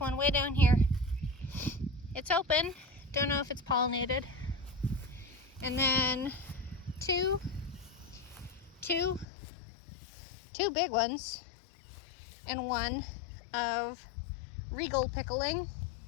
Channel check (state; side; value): drops out; right; at 9.2 s